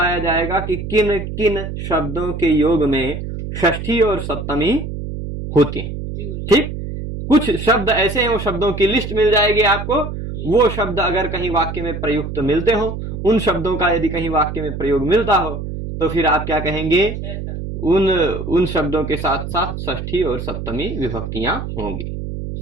जाएगा कि किन किन शब्दों के योग में षष्ठी और सप्तमी होती हैं। ठीक, कुछ शब्द ऐसे हैं, वो शब्दों की लिस्ट मिल जाएगी आपको। वो शब्द अगर कहीं वाक्य में प्रयुक्त मिलते हो, उन शब्दों का यदि कहीं वाक्य में प्रयोग मिलता हो, तो फिर आप क्या कहेंगे? उन शब्दों के साथ साथ षष्ठी और सप्तमी विभक्तियां होंगी।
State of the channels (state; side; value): noise; right; hum, 6 dB below the sound